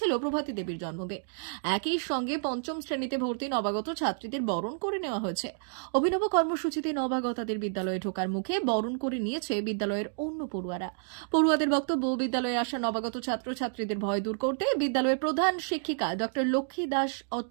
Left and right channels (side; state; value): left; silent; digital silence